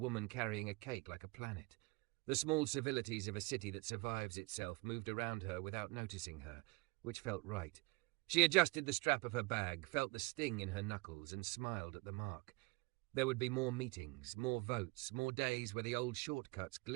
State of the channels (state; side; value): quieter; left; 26.4 dB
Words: carrying a cake like a planet. The small civilities of a city that survives itself moved around her without noticing her, which felt right. She adjusted the strap of her bag, felt the sting in her knuckles, and smiled at the mark. There would be more meetings, more votes, more days where the old shortcuts